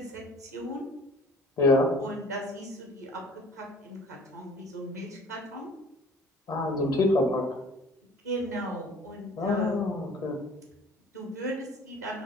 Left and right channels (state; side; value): normal; both; correlation 0.49